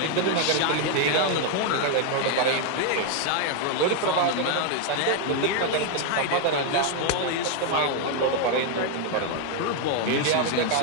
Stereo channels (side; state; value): both; different; correlation 0.00